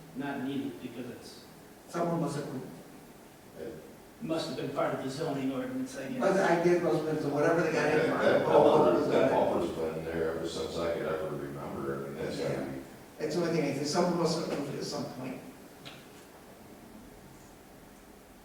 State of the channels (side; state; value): both; identical; correlation 1.00